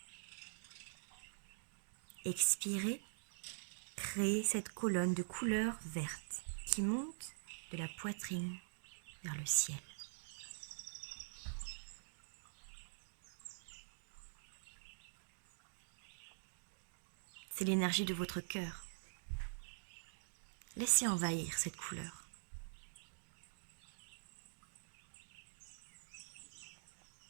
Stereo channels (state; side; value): silent; left; digital silence